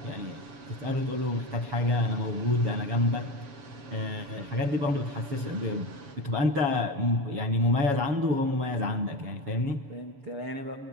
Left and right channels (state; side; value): late; left; 7.1 ms